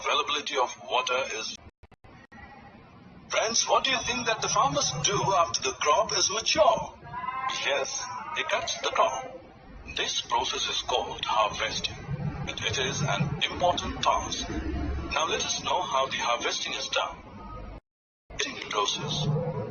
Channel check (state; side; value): identical; both; correlation 1.00